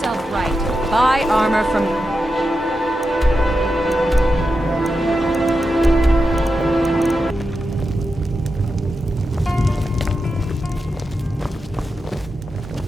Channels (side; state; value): both; normal; correlation 0.89